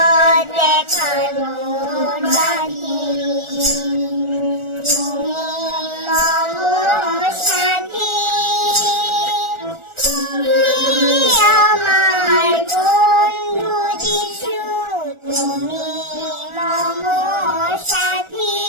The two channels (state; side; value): late; left; 1.4 ms